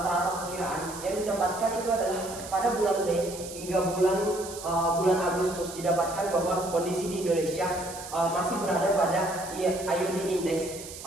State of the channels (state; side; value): noise; right; hiss, 12 dB below the sound